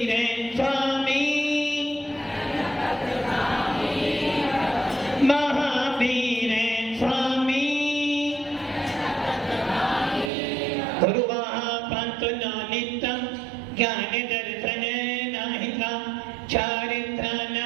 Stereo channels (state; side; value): drops out; left; at 10.3 s